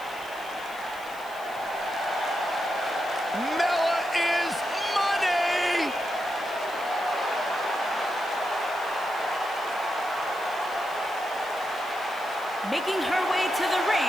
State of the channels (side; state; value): left; noise; hiss, 21 dB below the sound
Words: Making her way to the